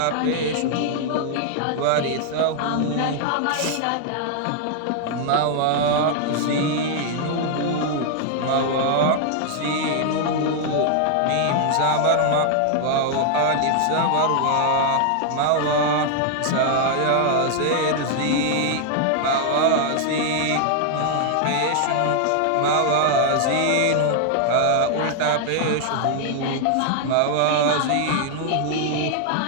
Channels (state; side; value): different; both; correlation 0.00